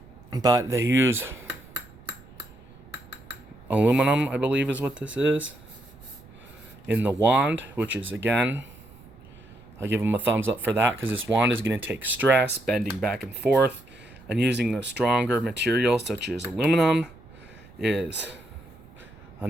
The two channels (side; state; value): right; noise; rumble, 22 dB below the sound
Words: But they use aluminum, I believe is what this is, in the wand, which is, again, I'll give them a thumbs up for that, because this wand is going to take stress, bending back and forth, and using a stronger material such as aluminum is